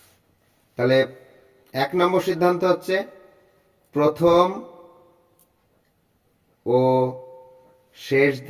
তাহলে 1 নম্বর সিদ্ধান্ত হচ্ছে প্রথম ও শেষ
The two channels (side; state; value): both; identical; correlation 1.00